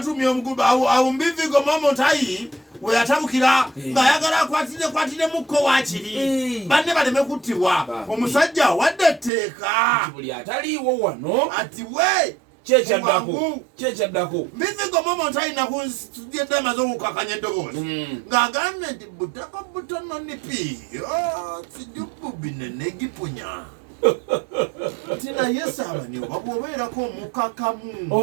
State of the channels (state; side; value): drops out; left; at 9.3 s